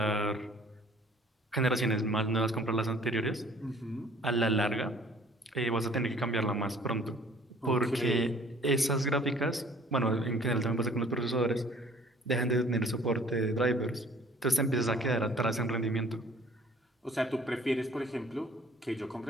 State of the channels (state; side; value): normal; both; correlation 0.54